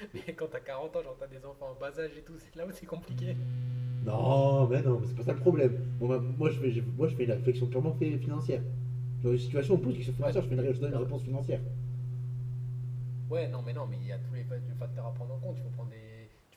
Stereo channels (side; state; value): both; identical; correlation 1.00